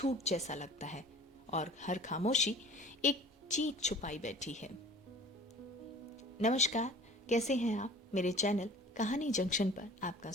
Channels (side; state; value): both; normal; correlation 0.45